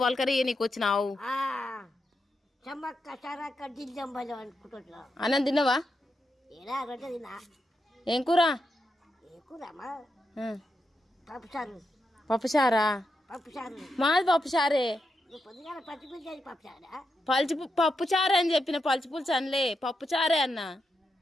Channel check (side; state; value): both; normal; correlation 0.85